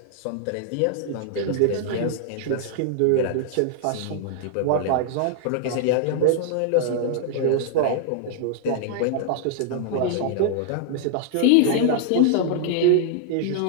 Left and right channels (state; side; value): different; both; correlation -0.01